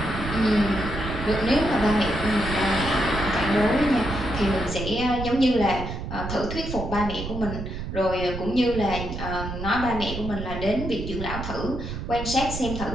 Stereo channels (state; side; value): noise; right; rumble, 7 dB below the sound